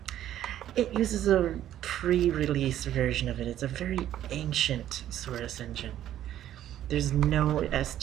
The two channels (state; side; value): quieter; left; 11.9 dB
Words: it uses a pre-release version of it. It's a very ancient Source engine. There's no